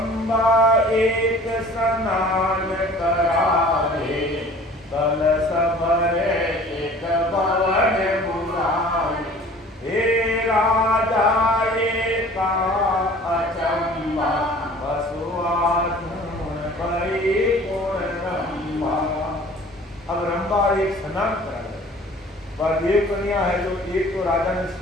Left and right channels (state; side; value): normal; both; correlation 0.48